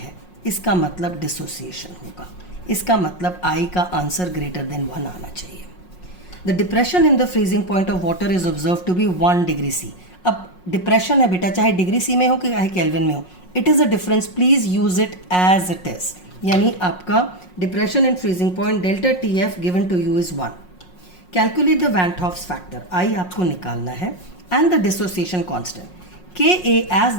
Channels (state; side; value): late; right; 5.5 ms